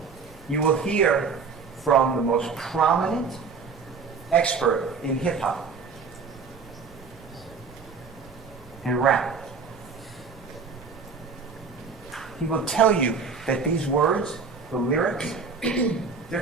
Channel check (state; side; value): quieter; left; 5.2 dB